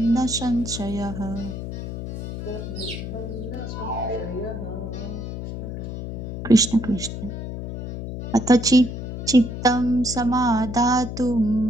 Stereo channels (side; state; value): left; noise; hum, 7 dB below the sound